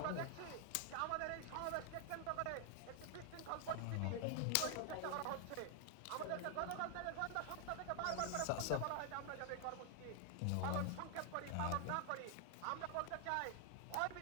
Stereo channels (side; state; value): both; different; correlation 0.00